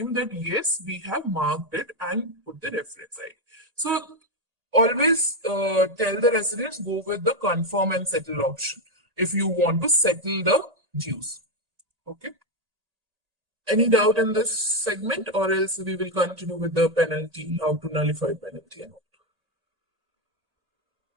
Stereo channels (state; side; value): late; left; 1.8 ms